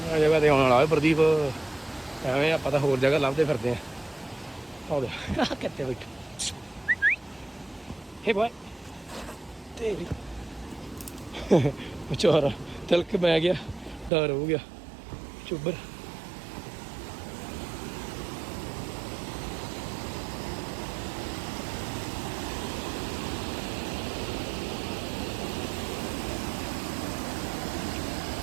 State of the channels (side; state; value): left; drops out; at 14.1 s